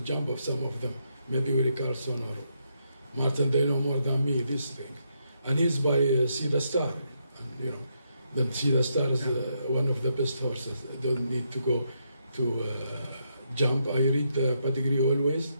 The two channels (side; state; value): both; inverted; correlation -0.79